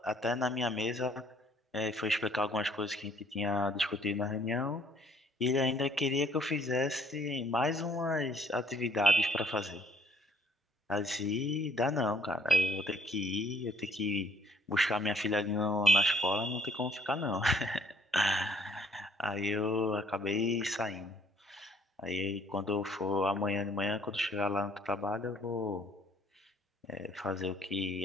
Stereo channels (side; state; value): both; normal; correlation 0.62